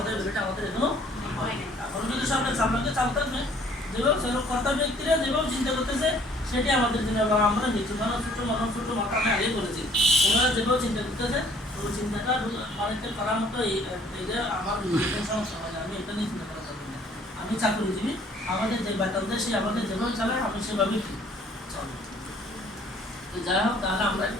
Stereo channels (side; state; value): both; normal; correlation 0.58